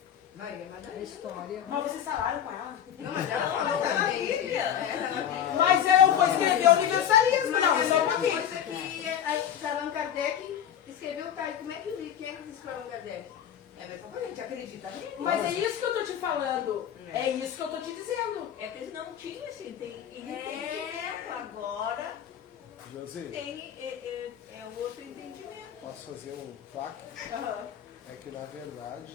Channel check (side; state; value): right; quieter; 9.6 dB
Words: Maria A Madalena. história. Mas vocês falaram com ela? Não, mas ela falou Tá na também. Bíblia. É, tá na Bíblia. Mas eu vou escrever universalismo, Mas não, é só um a mesma pouquinho. coisa que Allan Kardec escreveu, tá? E como é que quem é que disse para Allan Kardec? É a mesma coisa, a gente acredita nele. Mas é isso que eu tô te falando. É isso que eu tô te dizendo. É que eles não tinham assim, ele É. tem agora José, tem outro entendimento. posso fazer um plaque? Aham. É que na verdade